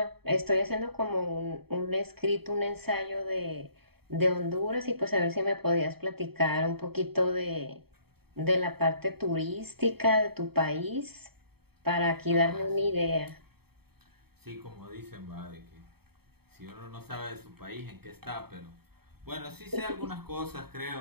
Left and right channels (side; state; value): left; late; 0.96 ms